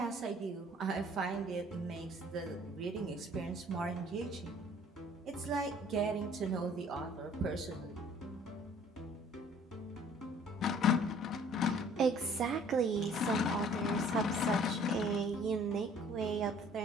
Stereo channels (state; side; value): normal; both; correlation 0.54